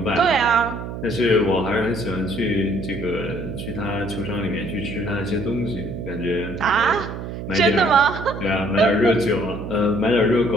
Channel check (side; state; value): right; noise; hum, 8 dB below the sound